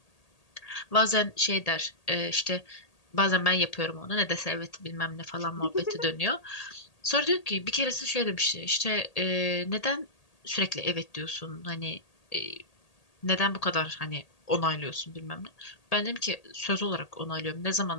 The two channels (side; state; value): right; late; 1.8 ms